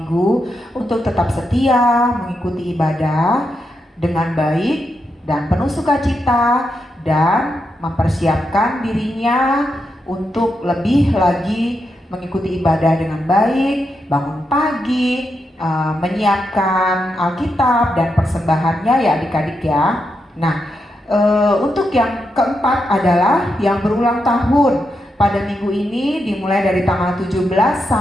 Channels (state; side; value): normal; both; correlation 0.84